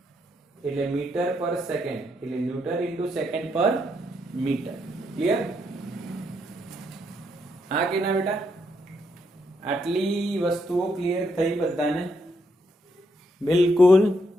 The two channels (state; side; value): normal; both; correlation 0.77